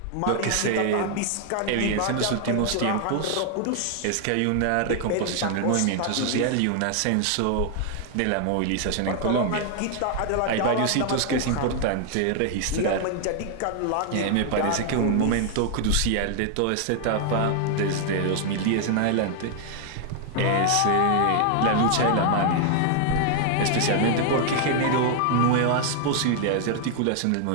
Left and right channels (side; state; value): both; different; correlation 0.00